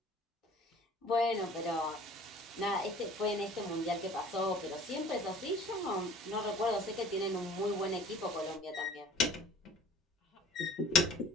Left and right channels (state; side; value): normal; both; correlation 0.48